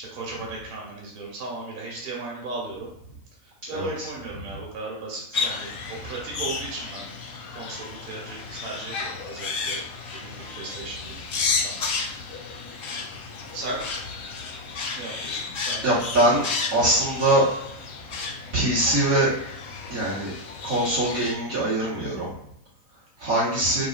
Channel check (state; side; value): late; left; 3.7 ms